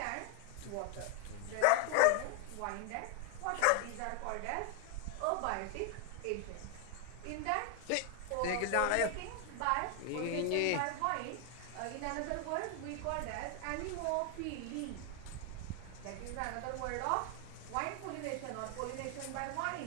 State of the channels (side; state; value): both; different; correlation 0.00